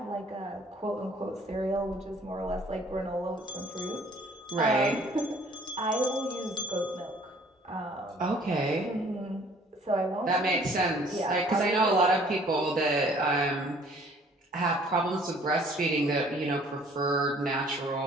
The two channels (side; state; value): both; normal; correlation 0.56